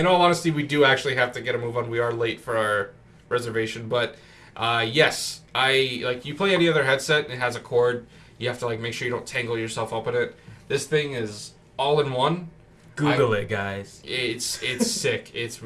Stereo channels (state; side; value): identical; both; correlation 1.00